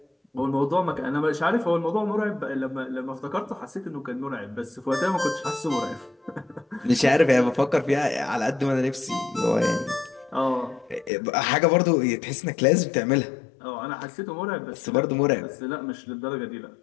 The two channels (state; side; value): drops out; right; at 11.1 s